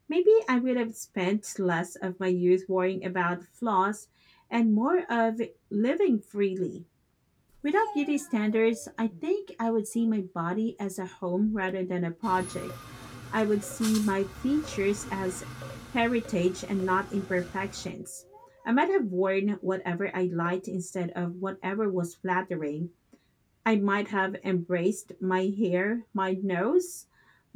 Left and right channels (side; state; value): both; identical; correlation 1.00